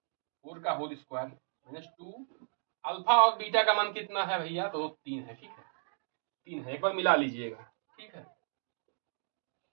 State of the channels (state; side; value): silent; left; digital silence